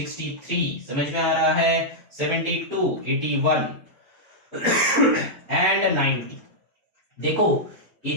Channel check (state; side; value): normal; both; correlation -0.07